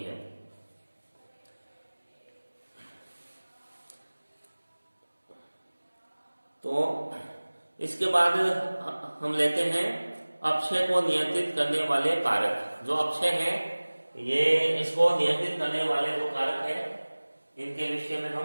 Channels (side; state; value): both; inverted; correlation -1.00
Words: तो इसके बाद हम लेते हैं अपक्षय को नियंत्रित करने वाले कारक। जो अपक्षय है ये, इसको नियंत्रित करने वाले जो कारक है, इनके विषय में